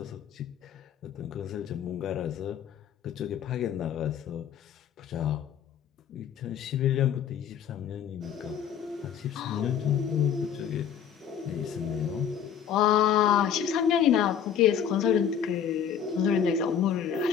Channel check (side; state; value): right; quieter; 8.5 dB